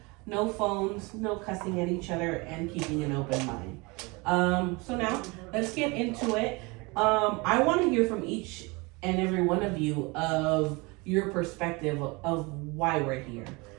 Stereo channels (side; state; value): left; quieter; 26.5 dB